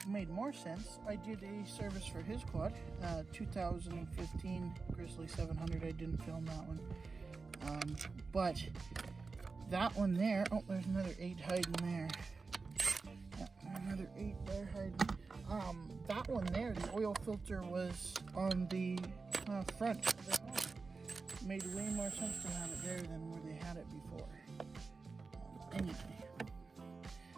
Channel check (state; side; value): quieter; left; 4.3 dB